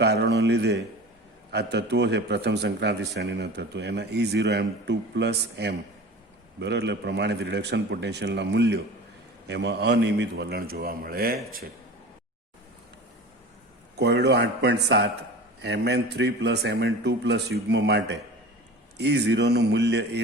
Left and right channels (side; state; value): both; normal; correlation 0.36